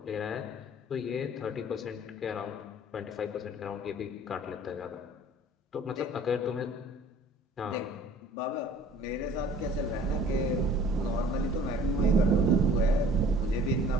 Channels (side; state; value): both; normal; correlation 0.51